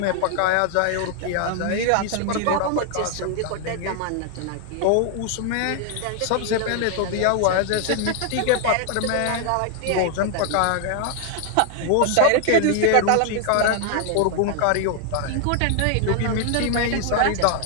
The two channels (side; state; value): both; different; correlation 0.00